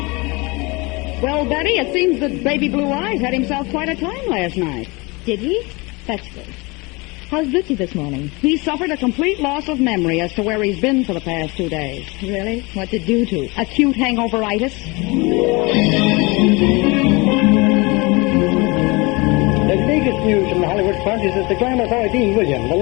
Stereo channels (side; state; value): right; quieter; 26.1 dB